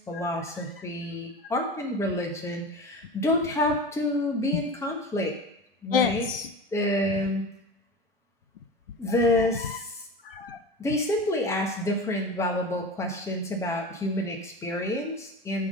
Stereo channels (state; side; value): normal; both; correlation 0.30